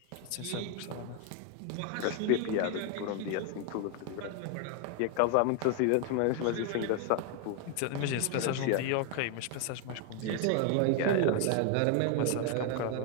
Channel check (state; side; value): different; both; correlation 0.00